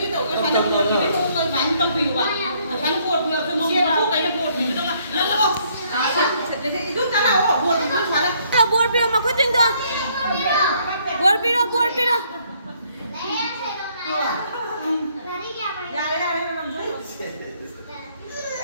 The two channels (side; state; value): both; inverted; correlation -0.67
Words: tổ cái phần cột thì tôi bán tông bìu à phần cột vừa tôi mong mua cái cột mình đâu mà nó không chút cái nào cột thì chút phải Là buồn bia mà quyết định thôi. Buồn bia